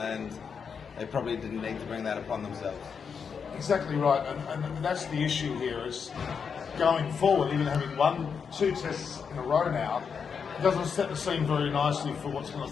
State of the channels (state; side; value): quieter; right; 6.3 dB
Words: they probably didn't need to bring that upon themselves. Exactly right, and that's the issue here is going forward, even having won 2 tests in a row now, it doesn't set the scene very nicely for what's going